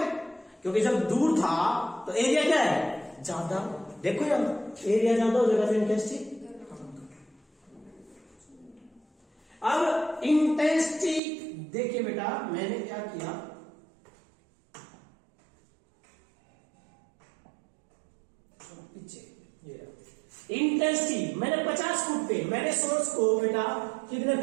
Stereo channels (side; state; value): left; drops out; at 11.2 s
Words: क्योंकि जब दूर था तो एरिया क्या है, ज्यादा। देखो यार एरिया ज्यादा हो जाएगा तो इंटेंसिटी। अब इंटेंसिटी देखिए बेटा, मैंने क्या किया, पीछे इंटेंसिटी मैंने 50 फुट पे, मैंने सोर्स को बेटा कितने